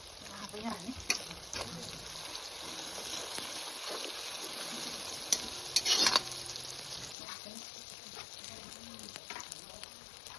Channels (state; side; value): drops out; right; at 7.2 s